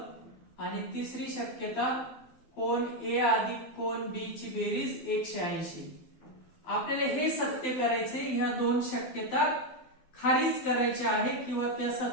आणि तिसरी शक्यता कोन ए अधिक कोन बी ची बेरीज 180. आपल्याला हे सत्य करायचे. ह्या 2 शक्यता खारिज करायच्या आहे किंवा त्या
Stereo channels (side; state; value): right; late; 12 ms